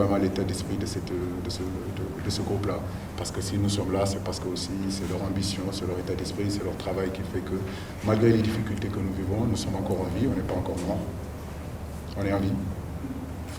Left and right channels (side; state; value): both; identical; correlation 1.00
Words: l'état d'esprit de ce groupe-là. Parce que si nous sommes là, c'est parce que aussi c'est leur ambition, c'est leur état d'esprit, c'est leur travail qui fait que malgré les difficultés que nous vivons, nous sommes encore en vie, on n'est pas encore morts. On est en vie. Il ne